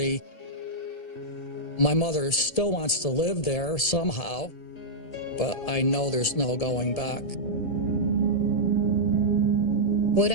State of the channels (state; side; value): late; right; 1.7 ms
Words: My mother still wants to live there somehow, but I know there's no going back. What